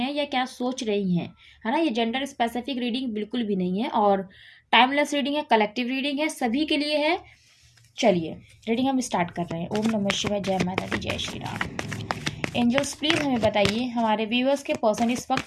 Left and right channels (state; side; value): identical; both; correlation 1.00